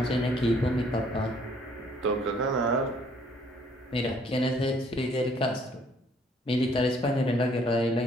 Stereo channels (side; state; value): both; normal; correlation 0.63